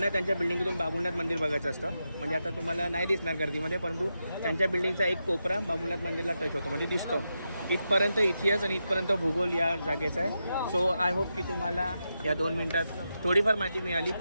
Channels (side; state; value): both; inverted; correlation -0.87